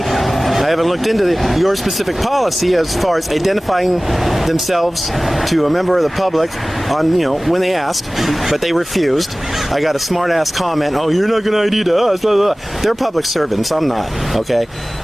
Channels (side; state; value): both; normal; correlation 0.98